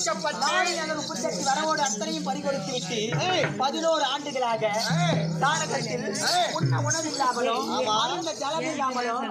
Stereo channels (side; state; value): both; identical; correlation 1.00